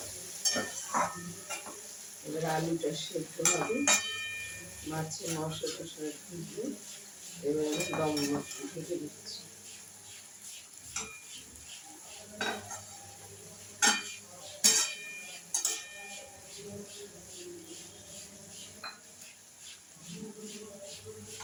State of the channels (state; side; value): identical; both; correlation 1.00